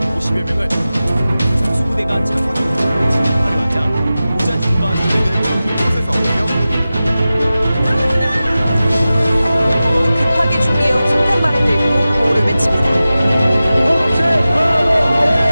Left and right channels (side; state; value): both; inverted; correlation -0.95